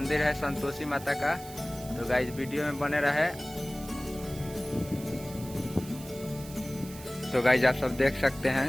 है संतोषी माता का। तो गाइज वीडियो में बने रहे। तो गाइज आप सब देख सकते हैं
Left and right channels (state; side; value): noise; right; hiss, 16 dB below the sound